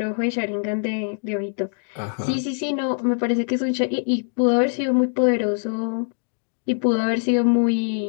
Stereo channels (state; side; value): silent; right; 63 dB below the other